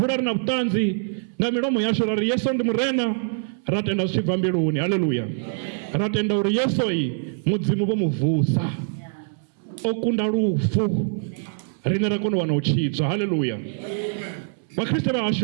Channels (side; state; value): left; silent; 63 dB below the other